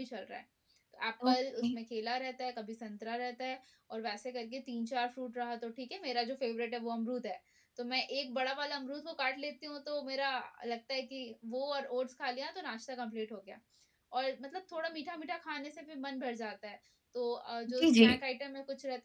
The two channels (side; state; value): both; identical; correlation 1.00